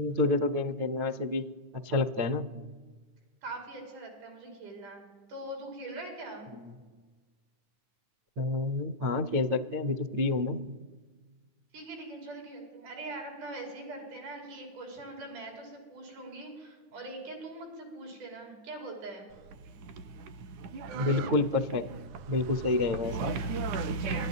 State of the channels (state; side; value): late; left; 9.5 ms